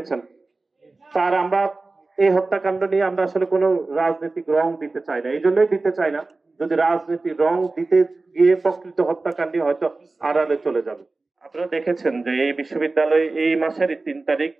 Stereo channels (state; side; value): quieter; left; 3.5 dB